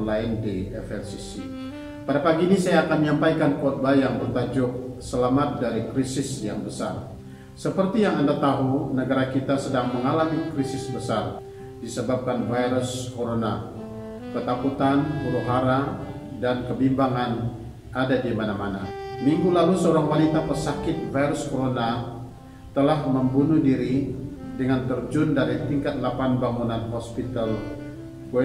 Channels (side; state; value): both; identical; correlation 1.00